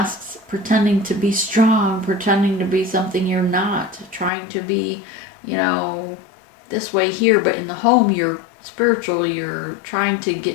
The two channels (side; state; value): right; drops out; at 4.3 s